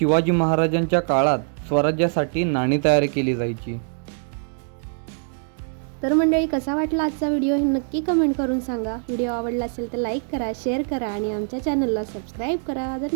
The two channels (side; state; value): left; silent; 59 dB below the other